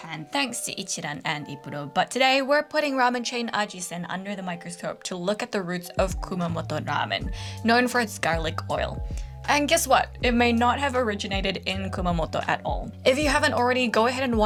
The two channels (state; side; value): identical; both; correlation 1.00